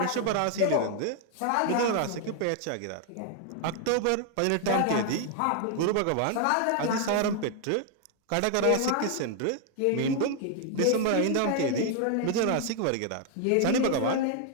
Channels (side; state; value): both; different; correlation 0.00